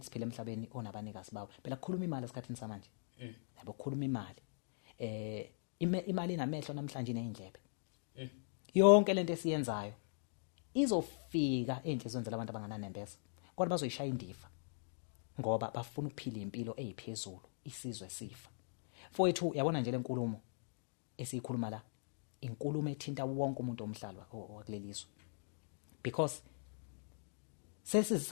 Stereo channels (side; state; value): right; silent; digital silence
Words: emhlabeni onabanikazi bawo. Phela kukhuluma imali esikhathini samanje. Yabo kukhuluma imali. Imali inamehlo namhlanje nezindlebe. Yonke lento esiyenzayo izofika enhlizweni zabantu abangananembeza kodwa bazoyishaya indiva ngoba bafuna ukuphila impilo eziphezulu, isizwe sifa. Mfowethu yabona nje lenkulumo esiyikhuluma la, inkulumo ethinta wonke umuntu omhlaba wakulelizwe because